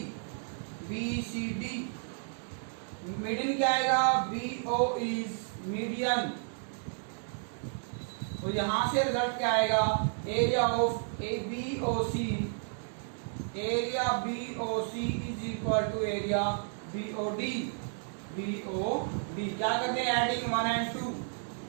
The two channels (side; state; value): left; silent; digital silence